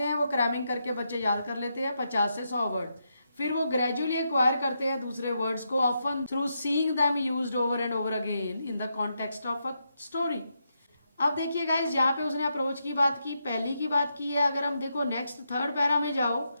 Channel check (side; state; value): both; inverted; correlation -0.82